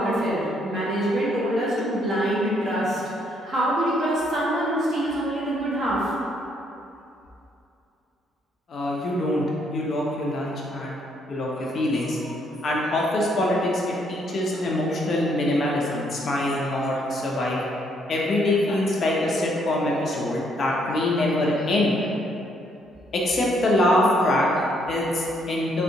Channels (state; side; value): normal; both; correlation 0.70